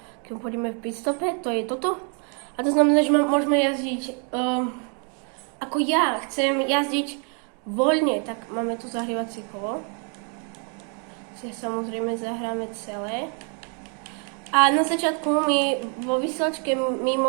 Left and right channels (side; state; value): left; quieter; 39.4 dB